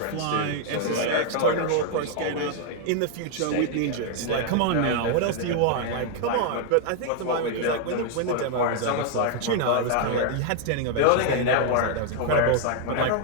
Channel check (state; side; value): different; both; correlation 0.00